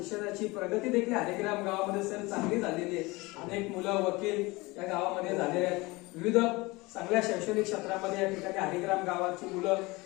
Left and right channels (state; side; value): quieter; right; 23.1 dB